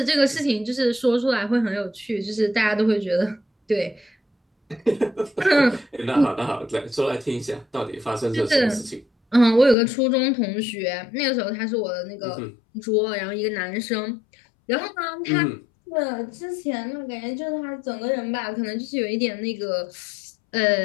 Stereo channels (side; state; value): right; drops out; at 9.8 s